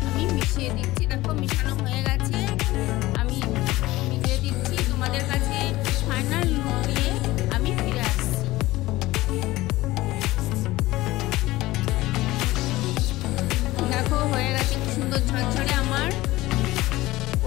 আমি মিশিয়ে দিচ্ছি। দেখো মিশানো হয়ে গেছে, আমি মিশিয়ে দিচ্ছি। তোমাদের কাছে ফাইনাল লুক দিয়ে আমি ফিরে আসছি। দেখো হয়ে গেছে কি সুন্দর ঝরঝরে আমার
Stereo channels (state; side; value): quieter; right; 18.1 dB